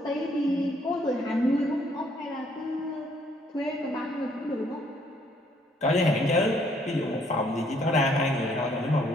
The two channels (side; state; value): both; normal; correlation 0.66